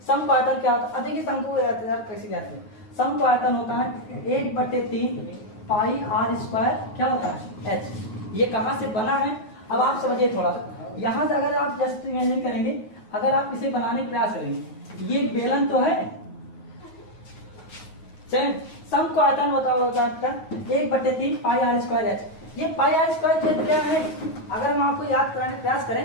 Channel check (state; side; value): late; right; 9.4 ms